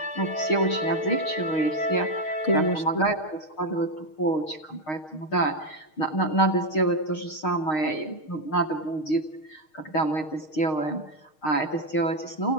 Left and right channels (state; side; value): late; right; 6.4 ms